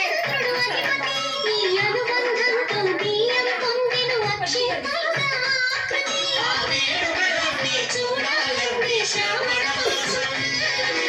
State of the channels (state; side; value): identical; both; correlation 1.00